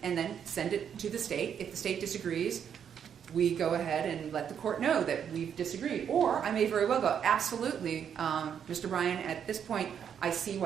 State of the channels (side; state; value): left; quieter; 8.2 dB